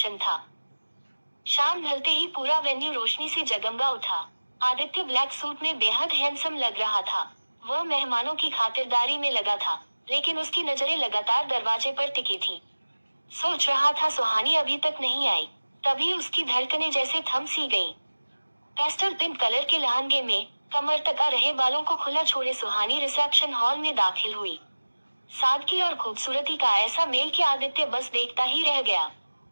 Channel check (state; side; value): inverted; both; correlation -1.00